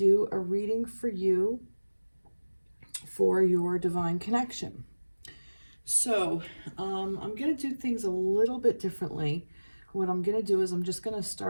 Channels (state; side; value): inverted; both; correlation -1.00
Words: a reading for you for your divine connection. So, I'm going to do things a little bit differently. What I'm going to do is I'm just going to